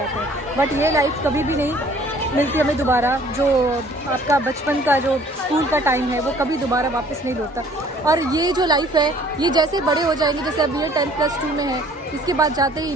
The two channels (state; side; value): normal; both; correlation 0.55